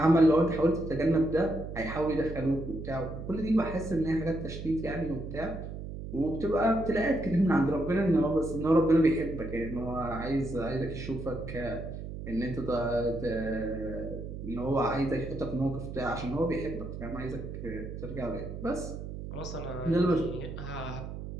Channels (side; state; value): right; noise; hum, 8 dB below the sound